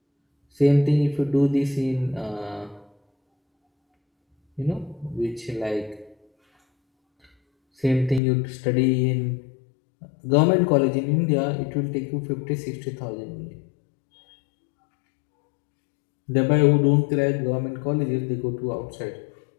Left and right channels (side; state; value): right; drops out; at 8.2 s